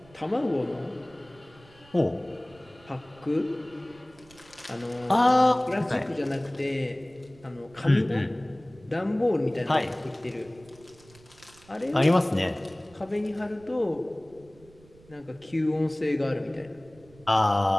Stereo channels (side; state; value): right; noise; rumble, 26 dB below the sound